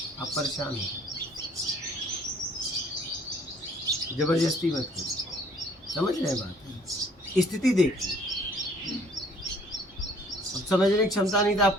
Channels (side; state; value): both; normal; correlation 0.58